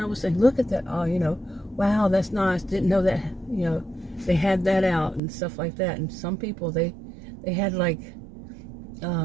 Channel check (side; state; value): left; drops out; at 5.2 s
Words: I was saying, look at that. Oh, you know, wow, that's nice. Didn't know that, you know, they had that out and stuff like that. And some people, they had like,